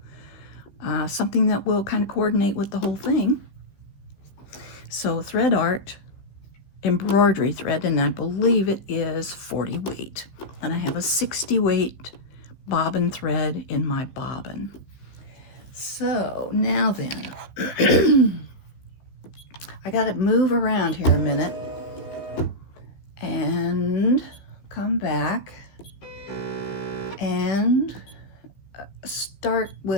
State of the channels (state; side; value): late; right; 15 ms